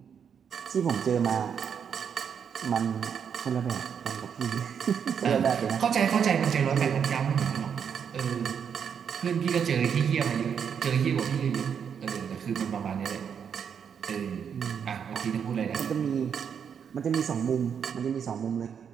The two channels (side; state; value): left; quieter; 7.5 dB